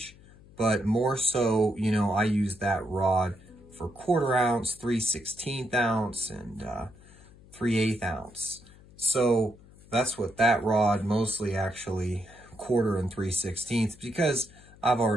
but more so, I use that rod for 1/4 ounce, 3/16 ounce, and 3/8 ounce. So that's what that rod mostly, actually 1/4 and 3/16, because I've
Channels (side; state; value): left; noise; hum, 23 dB below the sound